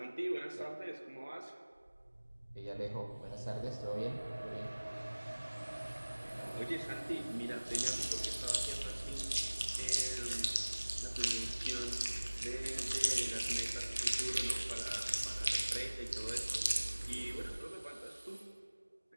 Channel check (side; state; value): both; inverted; correlation -1.00